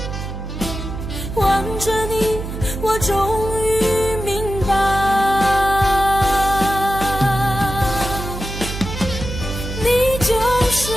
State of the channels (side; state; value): right; noise; hum, 7 dB below the sound